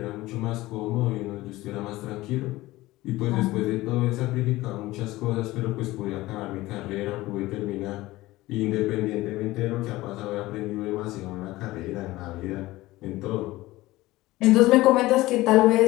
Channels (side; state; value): right; quieter; 18.3 dB